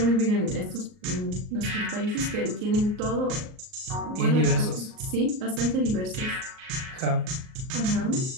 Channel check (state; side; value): late; left; 38 ms